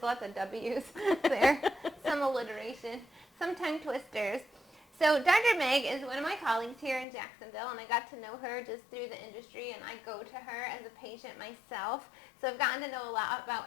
lots of W's there, some alliteration, some tongue twisters. So Dr. Meg is one of my colleagues here in Jacksonville, and I got to know her just through the industry, and I go to her as a patient myself. So I've gotten to know a lot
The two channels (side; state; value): right; drops out; at 7.1 s